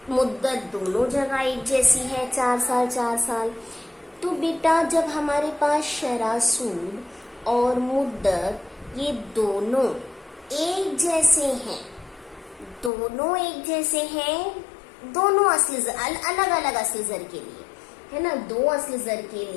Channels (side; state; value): right; drops out; at 12.9 s